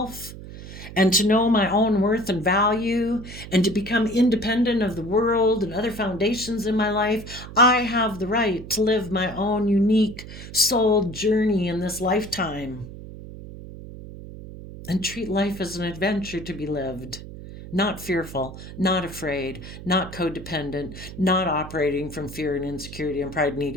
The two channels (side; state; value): right; noise; hum, 13 dB below the sound